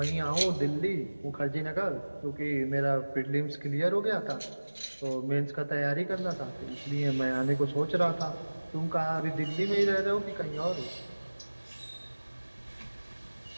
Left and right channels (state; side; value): inverted; both; correlation -1.00